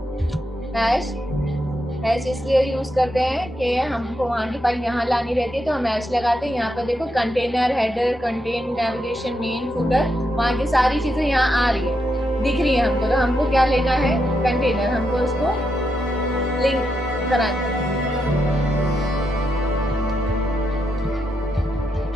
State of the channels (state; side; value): normal; both; correlation 0.83